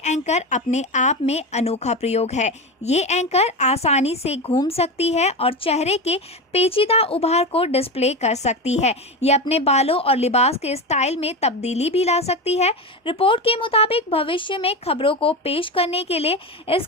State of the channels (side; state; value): both; normal; correlation 0.19